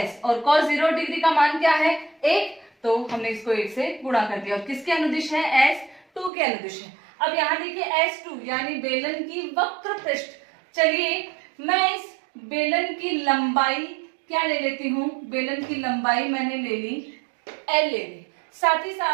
और cos 0 डिग्री का मान क्या है, 1। तो हमने इसको 1 से गुणा कर दिया। और किसके अनुदिश है, S2 के अनुदिश है। अब यहाँ देखिए S2 यानी बेलन की वक्र पृष्ठ। चलिए मैं इस बेलन की लंबाई क्या ले लेती हूँ, बेलन की लंबाई मैंने ले ली L ले ली। साथ ही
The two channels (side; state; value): left; drops out; at 6.3 s